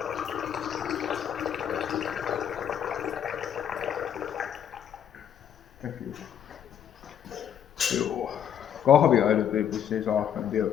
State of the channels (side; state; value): right; quieter; 9.2 dB